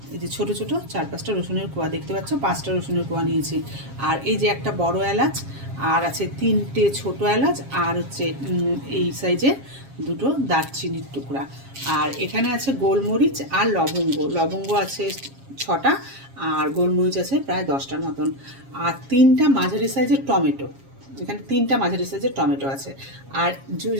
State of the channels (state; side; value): late; left; 7.4 ms